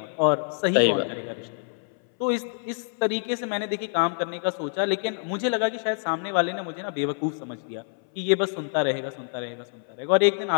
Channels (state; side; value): silent; right; 61 dB below the other